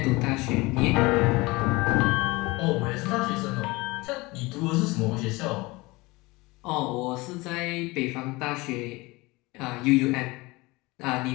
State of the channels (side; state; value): right; quieter; 22.7 dB